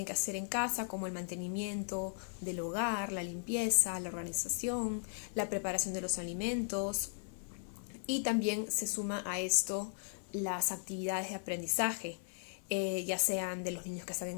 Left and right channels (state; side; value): silent; right; 53 dB below the other